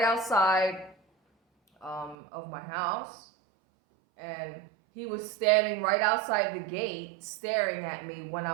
outside of my house, and he was standing right outside the gate staring at me when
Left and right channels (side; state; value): left; drops out; at 2.1 s